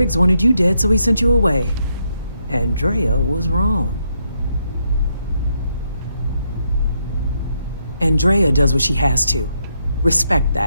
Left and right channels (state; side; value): inverted; both; correlation -0.78